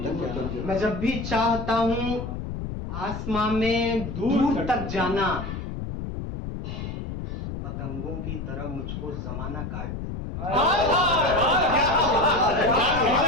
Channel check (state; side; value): noise; left; rumble, 6 dB below the sound